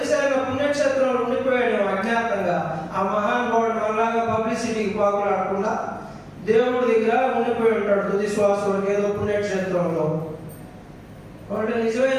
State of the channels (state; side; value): identical; both; correlation 1.00